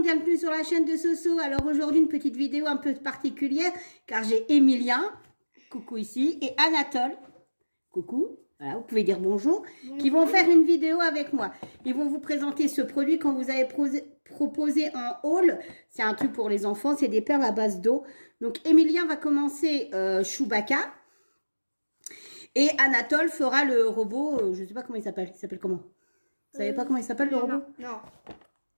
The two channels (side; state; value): both; inverted; correlation -1.00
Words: bienvenue sur la chaîne de Soso. Alors aujourd'hui une petite vidéo un peu particulière car j'ai Emilien, coucou ici, et Anatole, coucou, voilà, vous pouvez dire bonjour, qui vont faire une vidéo avec moi. Ils vont vous présenter ce produit qu'on vous avait proposé en haul. C'est un truc pour les enfants, c'est des perles à base d'eau. Donc Emilien va commencer Chewbacca et Anatole fera le robot, je ne sais pas comment il s'appelle comment? Vous savez pas comment il s'appelle le robot? Non.